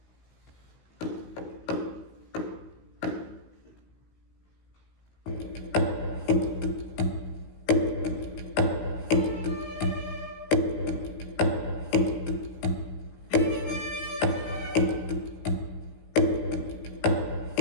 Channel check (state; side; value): late; right; 16 ms